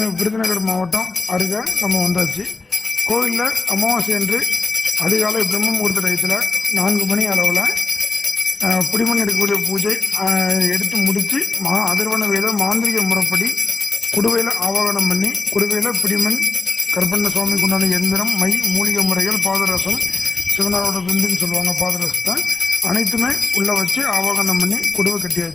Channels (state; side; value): quieter; right; 3.7 dB